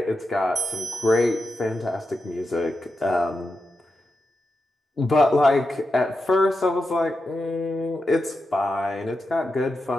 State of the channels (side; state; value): both; normal; correlation 0.89